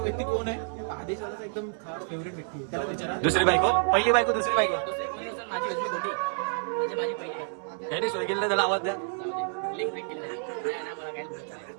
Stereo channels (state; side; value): silent; left; digital silence